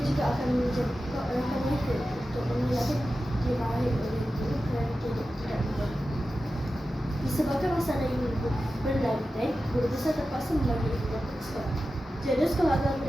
juga akan menjadikan mereka untuk mengelakkan diraih oleh guru kerana tidak mudah. Disebabkan masalah ini berlantai, guru besar terpaksa membagi ibu bapa ke sekolah. Jadual sekolah agama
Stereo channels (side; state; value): both; normal; correlation 0.93